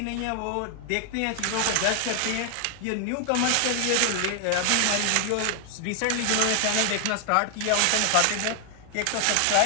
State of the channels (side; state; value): both; different; correlation 0.00